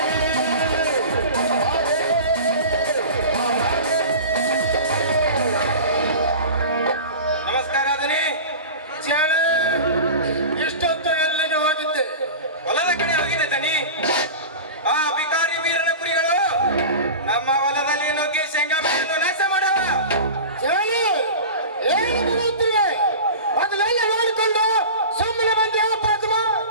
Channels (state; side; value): inverted; both; correlation -0.33